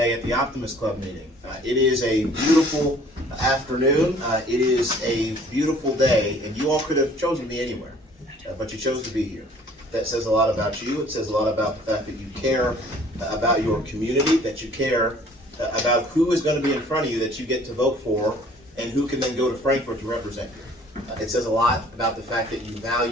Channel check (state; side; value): normal; both; correlation 0.54